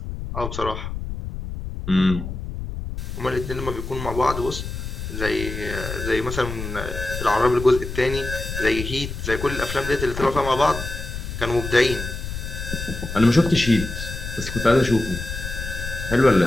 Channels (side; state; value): left; noise; rumble, 7 dB below the sound